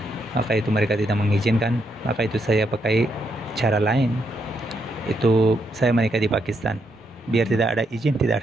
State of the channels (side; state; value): both; normal; correlation 0.78